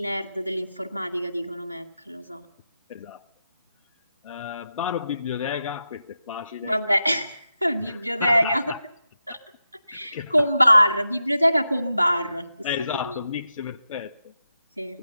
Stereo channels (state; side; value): inverted; both; correlation -0.89